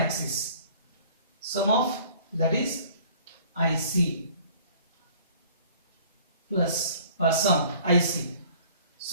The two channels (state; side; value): inverted; both; correlation -0.52